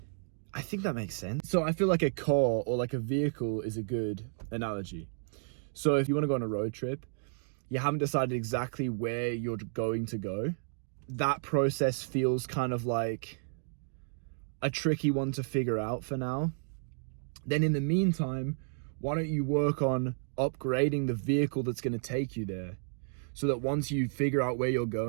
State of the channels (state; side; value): silent; left; digital silence